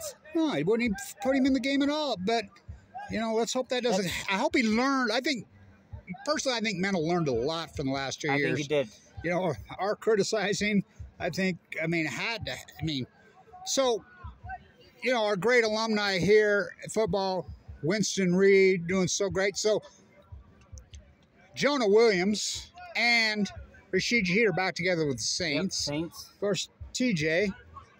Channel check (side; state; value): both; identical; correlation 1.00